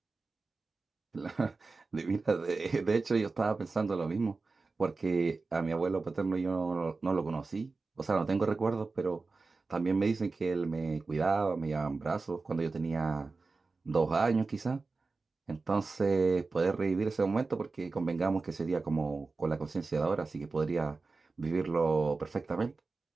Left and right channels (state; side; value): quieter; left; 3.9 dB